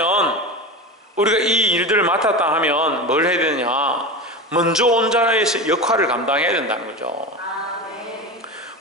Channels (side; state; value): both; normal; correlation 0.25